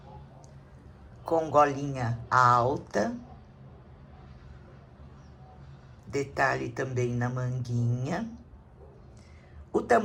Com golinha alta, detalhe também na manguinha. O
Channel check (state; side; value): identical; both; correlation 1.00